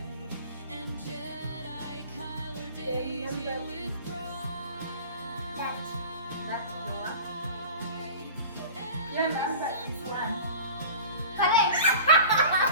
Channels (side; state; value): both; inverted; correlation -0.38